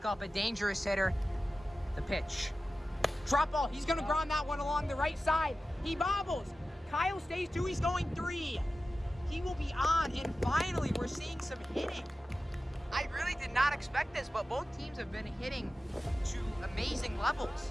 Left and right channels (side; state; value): both; normal; correlation 0.95